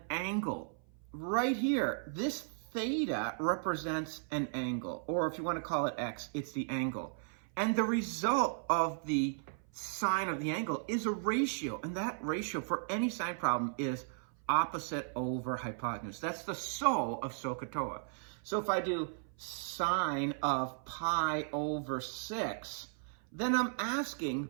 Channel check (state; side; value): silent; left; 54 dB below the other